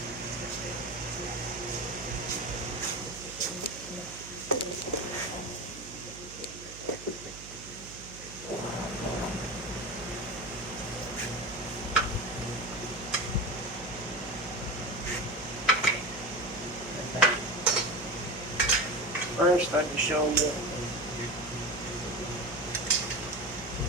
First, I can show you.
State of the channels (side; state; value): right; noise; hum, 15 dB below the sound